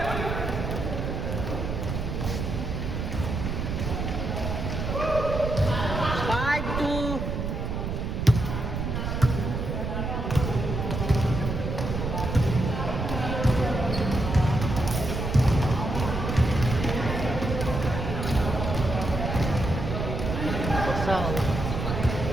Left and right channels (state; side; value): noise; right; rumble, 3 dB below the sound